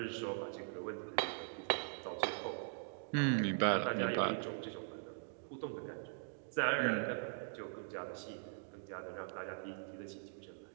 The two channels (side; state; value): left; silent; digital silence